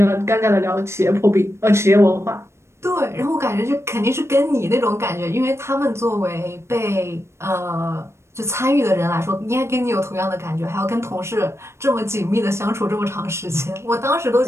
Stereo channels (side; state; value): left; late; 0.13 ms